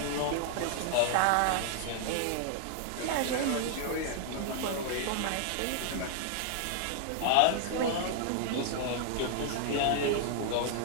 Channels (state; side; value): different; both; correlation 0.00